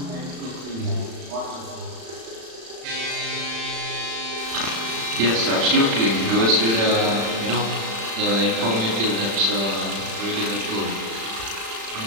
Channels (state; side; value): late; left; 35 ms